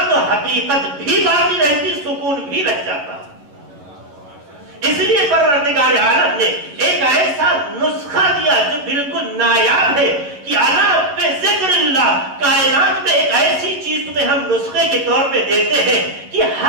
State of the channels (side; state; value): left; late; 11 ms